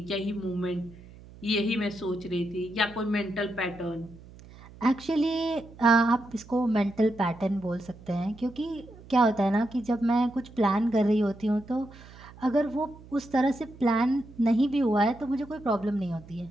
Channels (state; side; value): noise; right; hum, 20 dB below the sound